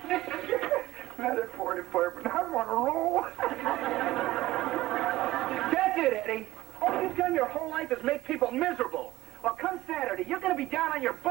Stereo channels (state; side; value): quieter; left; 16.7 dB